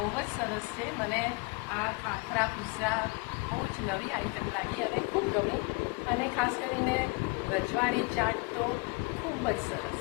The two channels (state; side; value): quieter; right; 29.6 dB